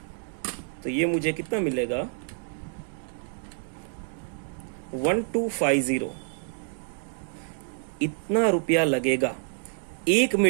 तो ये मुझे कितना मिलेगा? 1250। इतना रुपया लगेगा 1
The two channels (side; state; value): left; silent; 60 dB below the other